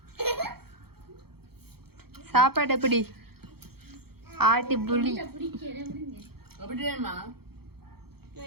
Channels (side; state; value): left; late; 0.96 ms